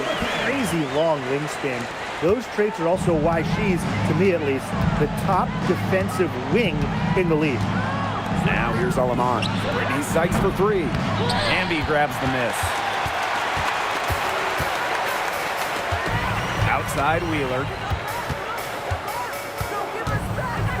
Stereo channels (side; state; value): both; identical; correlation 1.00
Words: crazy long wingspan. Those traits are also why she's, to me at least, the top defensive wing in the league. Now here's Alaman. Brittany Sykes for 3. Amby grabs the miss. Outside Wheeler.